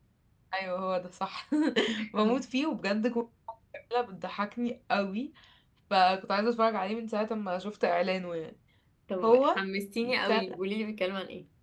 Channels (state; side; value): identical; both; correlation 1.00